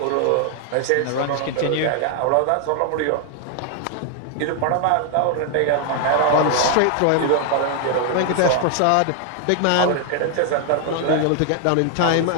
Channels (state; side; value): different; both; correlation 0.00